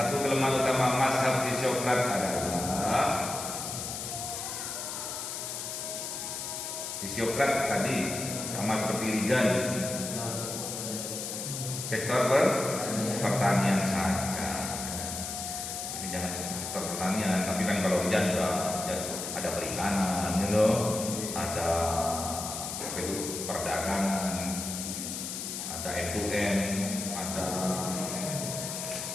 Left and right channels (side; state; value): left; noise; hiss, 5 dB below the sound